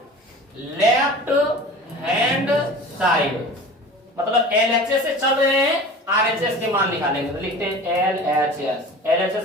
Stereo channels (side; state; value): both; normal; correlation 0.39